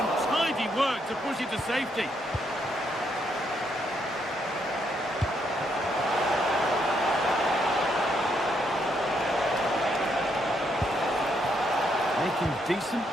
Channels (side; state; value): both; normal; correlation 0.75